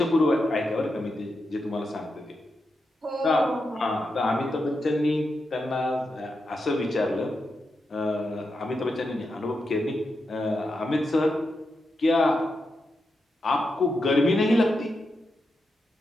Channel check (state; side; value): normal; both; correlation 0.86